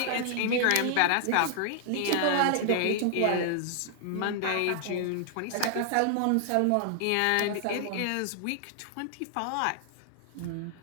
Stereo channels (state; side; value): different; both; correlation 0.00